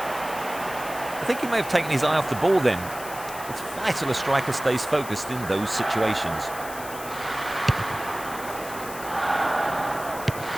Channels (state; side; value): noise; left; hiss, 13 dB below the sound